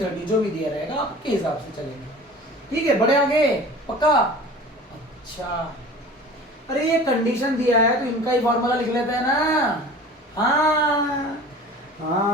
जो भी दिया रहेगा आपके हिसाब से चलेंगे। ठीक है, बढ़े आगे? पक्का? अच्छा, अरे ये कंडीशन दिया है तो इनका ही फॉर्मूला लिख लेते हैं ना।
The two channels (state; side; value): normal; both; correlation 0.41